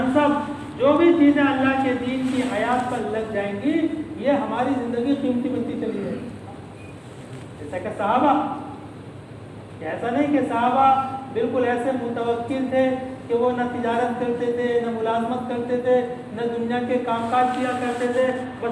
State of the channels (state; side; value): identical; both; correlation 1.00